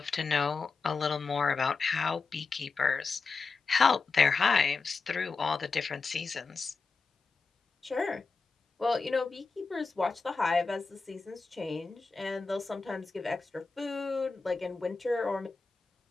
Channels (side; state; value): right; quieter; 4.4 dB